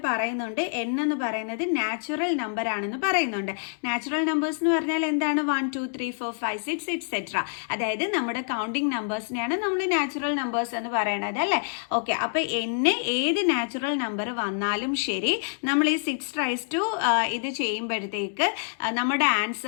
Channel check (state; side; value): silent; right; 60 dB below the other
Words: പറയുന്നുണ്ട്. n എന്ന് പറയുന്നത് നാച്ചുറൽ നമ്പർ ആണെന്ന് പറയുന്നുണ്ട്. നാച്ചുറൽ നമ്പേഴ്സ് എന്ന് പറഞ്ഞാൽ എന്താണ്? 1 2 3 4 5 6 എക്സെട്ര. അതായത് നമ്മുടെ കൗണ്ടിങ് നമ്പേഴ്സിനെയാണ് നമ്മൾ നാച്ചുറൽ നമ്പേഴ്സ് എന്ന് പറയുന്നത്, അല്ലേ? ഓക്കെ, അപ്പൊ n ഏത് നാച്ചുറൽ നമ്പർ വന്നാലും ശരി, നമ്മൾ ഈ 6 റൈസ് ടു ഇത് ചെയ്യുമ്പോഴത്തേക്ക് നമ്മുടെ